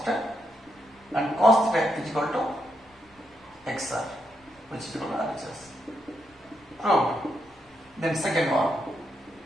and cos theta is equal to xr, which is equal to RHS. Proved. Then second one,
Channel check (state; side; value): normal; both; correlation 0.80